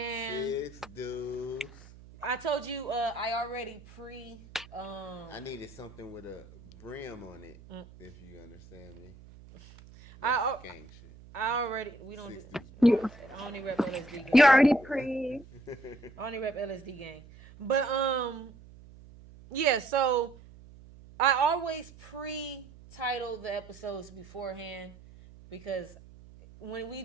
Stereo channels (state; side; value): noise; right; hum, 20 dB below the sound